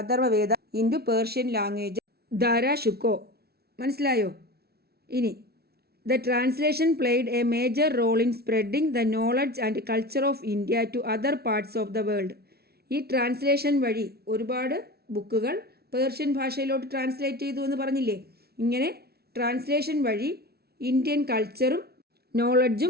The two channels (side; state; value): left; late; 0.45 ms